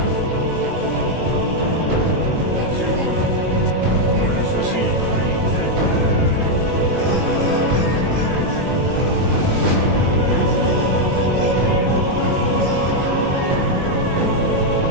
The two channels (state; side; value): late; left; 22 ms